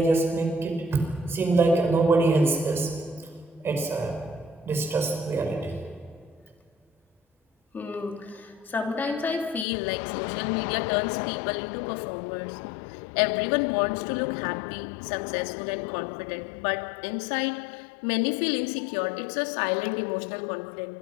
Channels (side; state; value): right; drops out; at 9.7 s